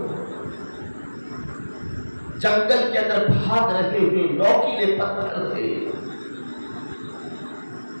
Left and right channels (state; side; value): inverted; both; correlation -1.00